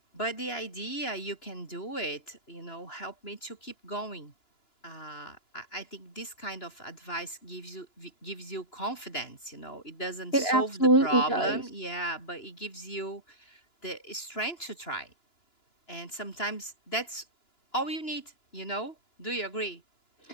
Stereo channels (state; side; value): late; right; 2.9 ms